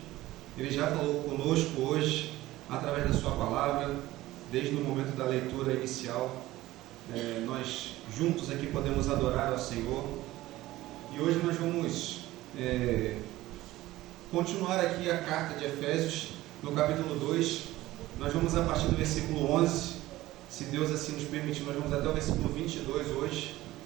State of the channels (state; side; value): quieter; left; 16.8 dB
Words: Ele já falou conosco hoje, através da Sua palavra, desde o momento da leitura inicial. Nós juntos aqui podemos adorar ao Senhor. E hoje nós vamos continuar aqui a carta de Efésios, no capítulo 2. Nós vamos a partir do versículo 11, se Deus assim nos permitir, nós vamos até o versículo 22 hoje.